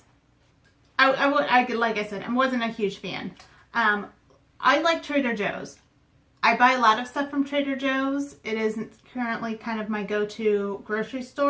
like I said, I wasn't a huge fan. I like Trader Joe's. I buy a lot of stuff from Trader Joe's. It is currently kind of my go-to grocery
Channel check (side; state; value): both; identical; correlation 1.00